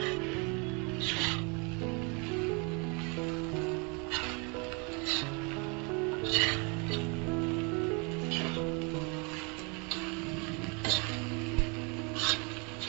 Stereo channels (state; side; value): quieter; left; 32.2 dB